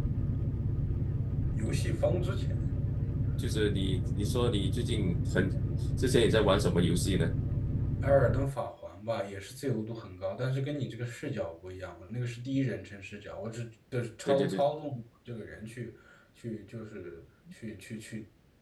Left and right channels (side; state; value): both; identical; correlation 1.00